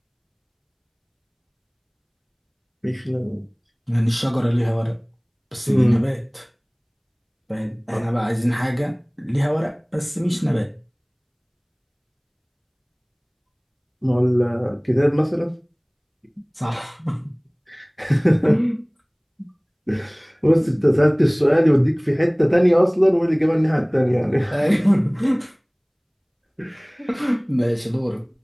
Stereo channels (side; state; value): both; identical; correlation 1.00